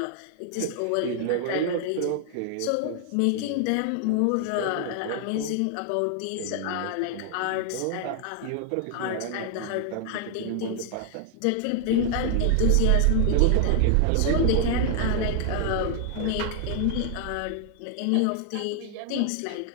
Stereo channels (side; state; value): both; different; correlation 0.00